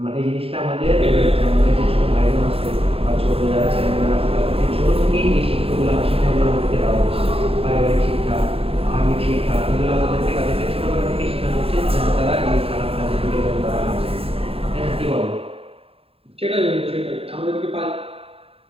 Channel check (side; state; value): left; late; 0.27 ms